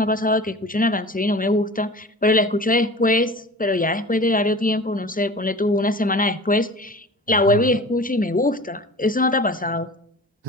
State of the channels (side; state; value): both; normal; correlation 0.39